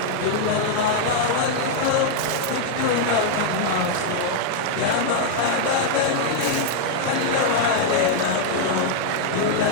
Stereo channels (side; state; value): both; different; correlation 0.00